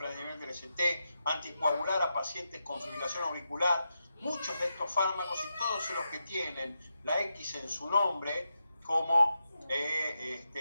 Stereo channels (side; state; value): both; inverted; correlation -0.86